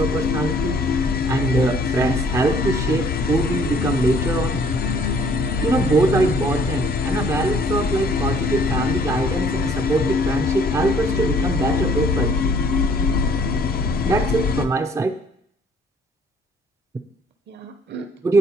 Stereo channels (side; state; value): both; normal; correlation 0.59